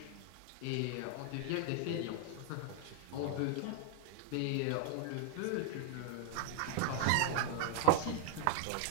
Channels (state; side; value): different; both; correlation 0.00